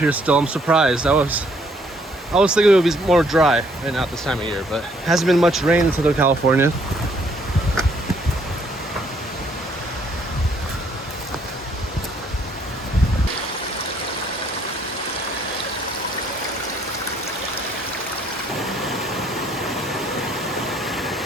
still. I'm surprised. I was thinking it would be more dry right now at this time of year, but hasn't been much rain in Southern California.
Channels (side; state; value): both; normal; correlation 0.66